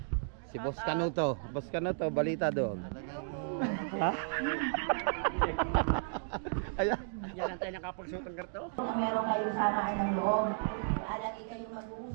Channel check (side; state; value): left; silent; digital silence